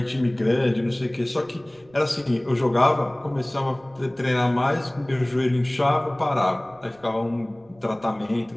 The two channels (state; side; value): noise; right; rumble, 29 dB below the sound